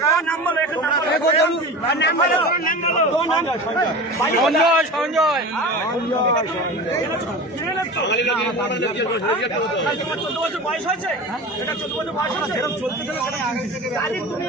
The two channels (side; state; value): both; normal; correlation 0.32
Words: সঞ্জয় 14 বছর বয়স হয়েছে, এটা 14 বছর বয়স হয়েছে, এরকম চলতে চলে তুমি